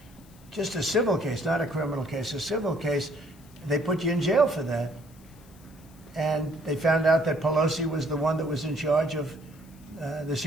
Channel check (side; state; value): left; noise; hiss, 27 dB below the sound